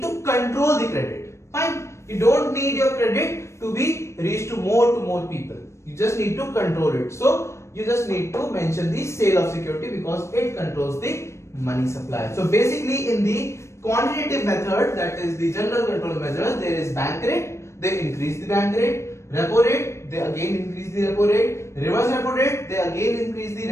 to control the credit. Fine. You don't need your credit to be reached to more people. You just need to control it. So you just need to mention the sale of security because it controls the money supply. So basically, in the quantitative method, that is the general control measures, there is bank rate. They increase the bank rate. Repo rate, they again increase the repo rate. Reverse repo rate, they again increase the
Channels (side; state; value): right; late; 0.13 ms